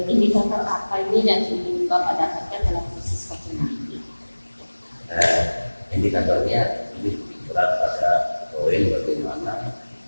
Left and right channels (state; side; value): inverted; both; correlation -1.00